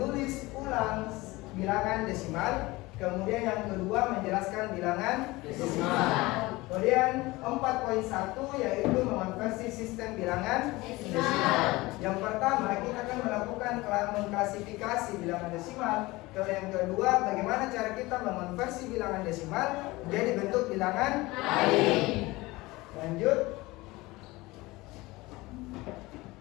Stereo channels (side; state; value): right; quieter; 21.0 dB